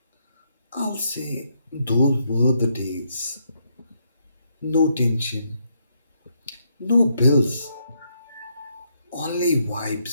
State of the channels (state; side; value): inverted; both; correlation -0.76